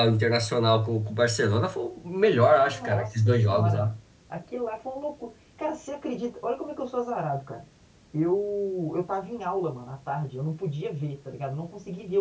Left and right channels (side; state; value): both; identical; correlation 1.00